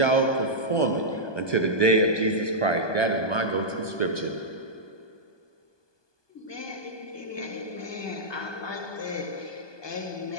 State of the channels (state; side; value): late; right; 1.2 ms